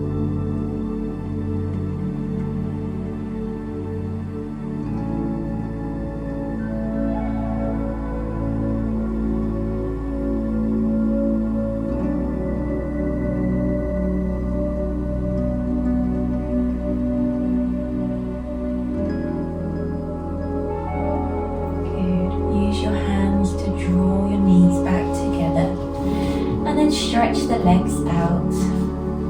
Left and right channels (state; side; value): identical; both; correlation 1.00